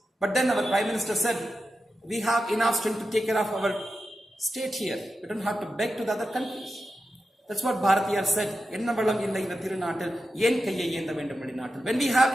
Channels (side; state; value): both; normal; correlation 0.90